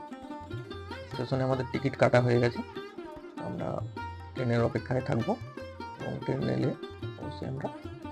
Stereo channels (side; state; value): both; identical; correlation 1.00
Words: স্টেশনে আমাদের টিকিট কাটা হয়ে গেছে। আমরা ট্রেনের অপেক্ষায় থাকবো এবং ট্রেন এলে অবশ্যই আমরা